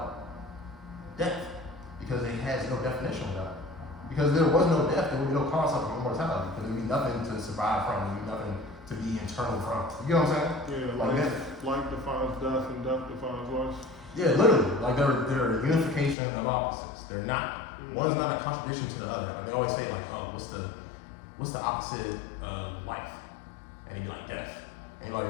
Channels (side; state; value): right; drops out; at 16.2 s